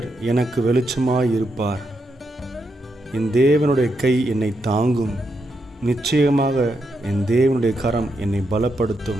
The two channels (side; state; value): both; normal; correlation 0.82